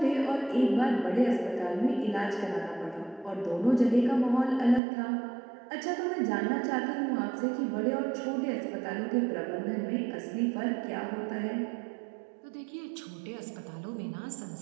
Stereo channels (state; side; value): drops out; left; at 4.8 s